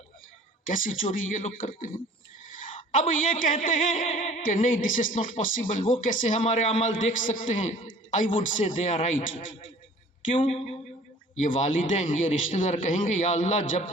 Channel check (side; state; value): both; normal; correlation 0.49